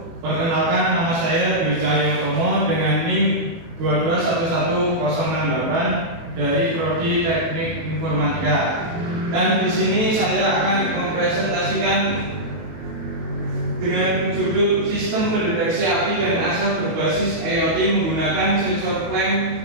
Perkenalkan, nama saya Dwi Cahyotomo dengan NIM 2211068 dari Prodi Teknik Informatika. Dan di sini saya akan mempresentasikan dengan judul Sistem Pendeteksi Api dan Asap Berbasis IoT menggunakan sensor clamp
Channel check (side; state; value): left; late; 18 ms